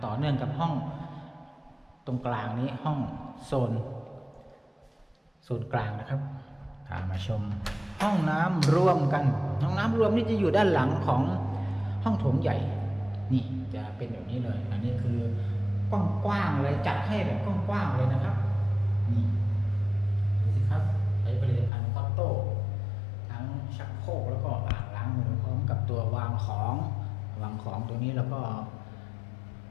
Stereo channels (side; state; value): right; drops out; at 21.7 s